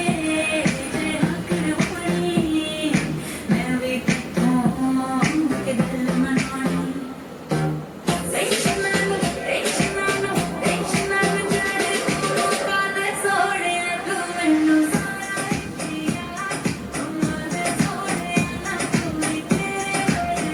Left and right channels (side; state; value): both; identical; correlation 1.00